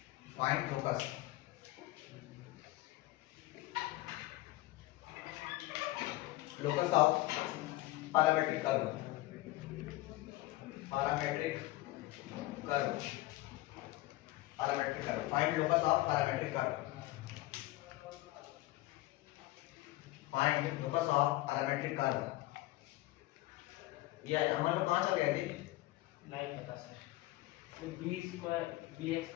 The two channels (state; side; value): quieter; right; 18.2 dB